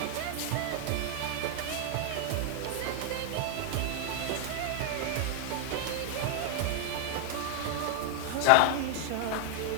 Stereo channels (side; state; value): both; different; correlation 0.00